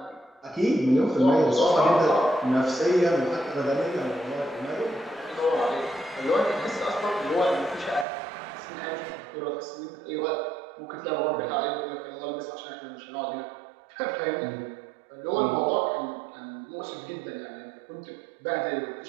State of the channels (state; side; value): drops out; left; at 8.1 s